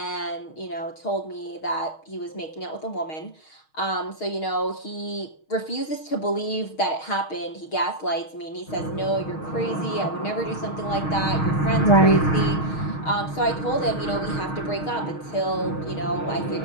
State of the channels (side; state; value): right; late; 6.4 ms